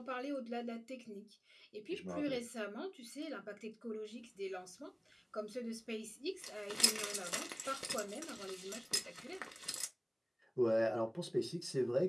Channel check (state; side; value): identical; both; correlation 1.00